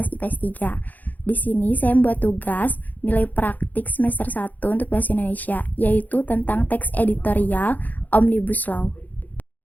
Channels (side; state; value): right; late; 0.082 ms